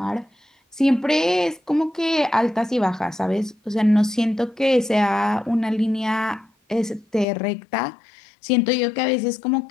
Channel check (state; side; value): drops out; right; at 7.2 s